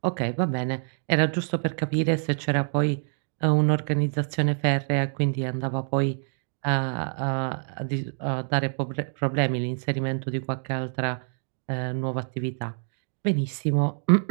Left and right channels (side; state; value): left; silent; digital silence